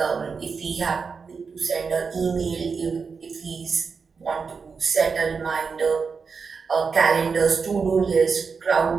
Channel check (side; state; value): left; quieter; 5.3 dB